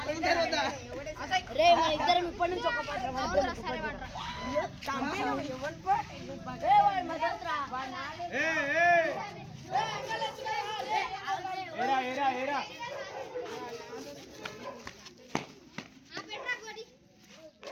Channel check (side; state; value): both; identical; correlation 1.00